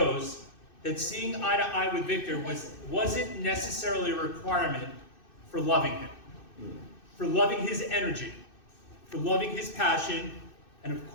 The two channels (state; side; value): late; right; 2.6 ms